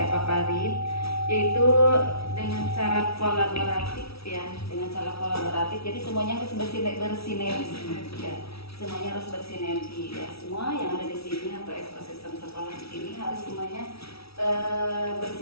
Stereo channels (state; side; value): late; right; 0.76 ms